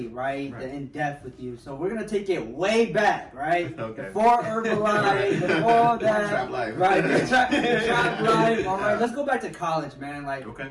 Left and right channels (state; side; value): identical; both; correlation 1.00